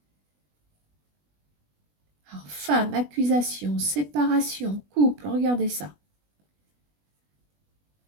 Alors, femme, accusation, séparation, couple, regardez ça.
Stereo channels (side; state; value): left; late; 20 ms